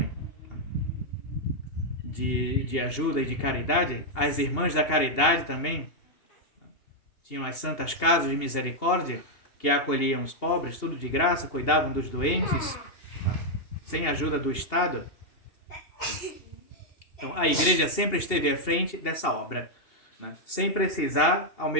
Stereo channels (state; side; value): late; right; 2.8 ms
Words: de ajuda e de caridade. As irmãs da caridade também tinham as santas casas de misericórdia que acolhiam os pobres, tudo de graça, cuidavam dos doentes, sem ajuda do Estado. Então, a igreja sempre esteve à frente dessa obra, né? Sem precisar, ao